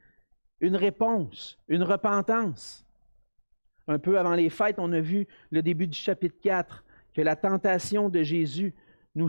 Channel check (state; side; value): inverted; both; correlation -1.00